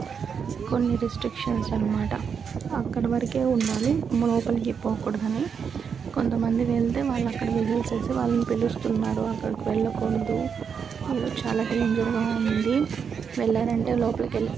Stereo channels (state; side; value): quieter; left; 6.7 dB